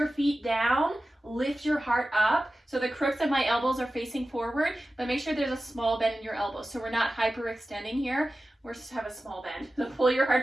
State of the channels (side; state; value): both; normal; correlation 0.95